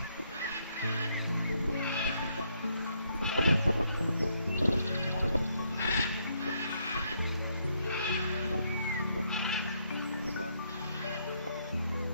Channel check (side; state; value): both; inverted; correlation -0.73